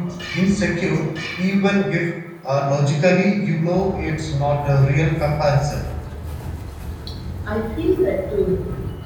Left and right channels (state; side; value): identical; both; correlation 1.00